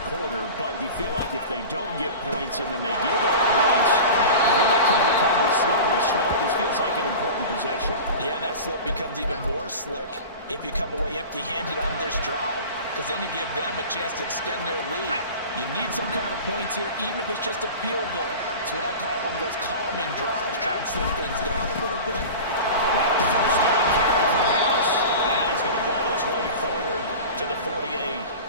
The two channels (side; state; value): both; inverted; correlation -0.34